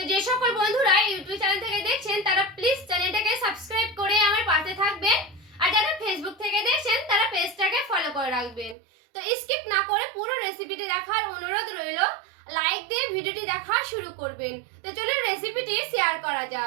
যে সকল বন্ধুরা ইউটিউব চ্যানেল থেকে দেখছেন তারা প্লিজ চ্যানেলটাকে সাবস্ক্রাইব করে আমার পাশে থাকবেন, আর যারা ফেসবুক থেকে দেখছেন তারা পেজটাকে ফলো করে রাখবেন। তো স্কিপ না করে পুরো রেসিপিটি দেখার অনুরোধ রইল। লাইক দিয়ে ভিডিওটি দেখা শুরু করবেন। তো চলুন রেসিপিটি শেয়ার করা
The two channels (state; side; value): drops out; left; at 8.8 s